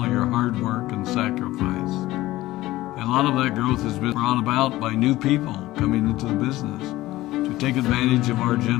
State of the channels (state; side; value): quieter; right; 17.0 dB